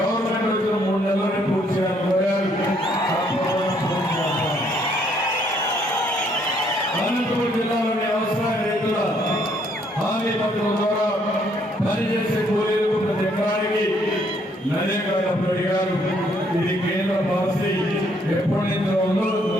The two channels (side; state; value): both; normal; correlation 0.68